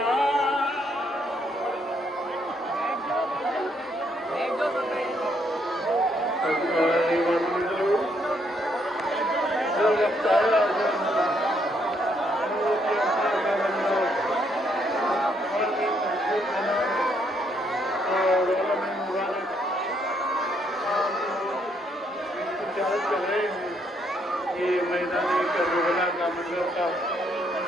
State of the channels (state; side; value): normal; both; correlation 0.72